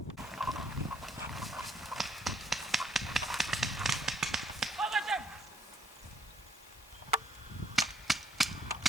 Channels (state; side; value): normal; both; correlation 0.68